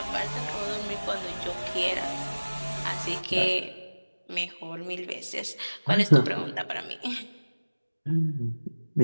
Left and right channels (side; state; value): both; inverted; correlation -1.00